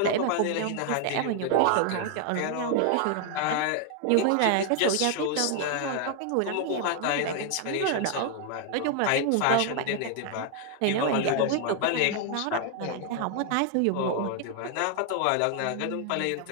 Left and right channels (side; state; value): both; different; correlation 0.00